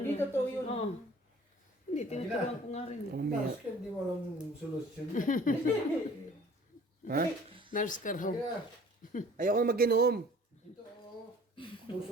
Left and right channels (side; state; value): both; normal; correlation 0.50